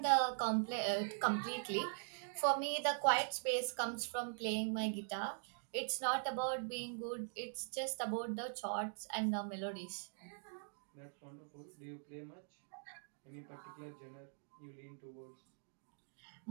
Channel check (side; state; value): left; silent; digital silence